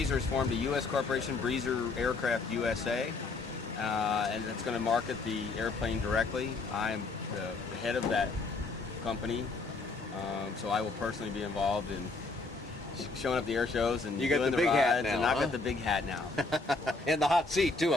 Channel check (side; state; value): right; quieter; 3.7 dB